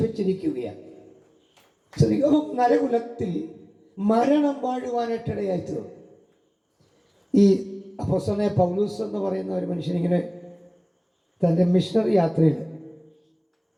വെച്ചിരിക്കുകയാണ്. അപ്പം നരകുലത്തിൽ മരണം വാഴുവാനായിട്ടിടയായി തീർന്നു. ഈ അപ്പോസ്തലനായ പൗലോസ് എന്ന് പറയുന്ന ഒരു മനുഷ്യനിങ്ങനെ തൻ്റെ മിഷണറി യാത്രയിൽ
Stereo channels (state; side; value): identical; both; correlation 1.00